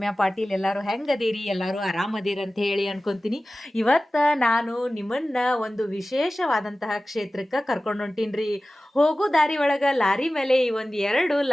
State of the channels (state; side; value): normal; both; correlation 0.96